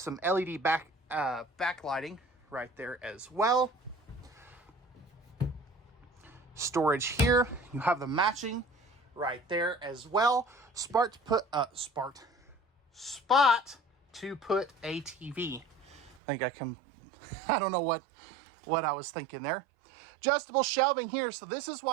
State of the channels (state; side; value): drops out; left; at 16.2 s